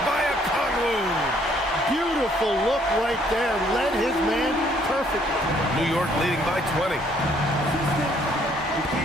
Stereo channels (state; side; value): normal; both; correlation 0.65